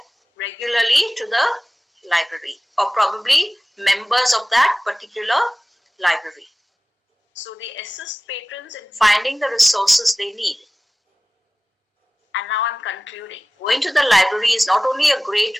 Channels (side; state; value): both; normal; correlation 0.97